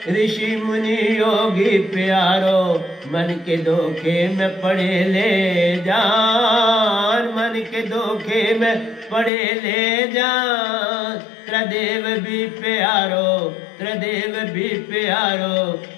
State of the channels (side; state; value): right; drops out; at 9.3 s